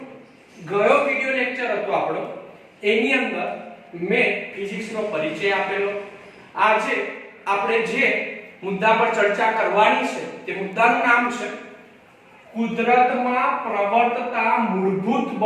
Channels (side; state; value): both; identical; correlation 1.00